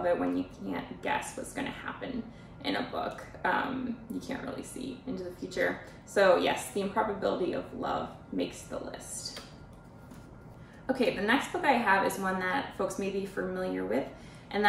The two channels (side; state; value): both; identical; correlation 1.00